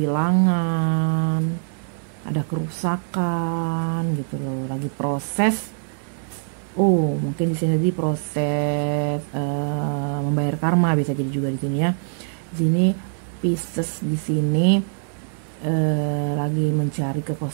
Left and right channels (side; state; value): left; silent; digital silence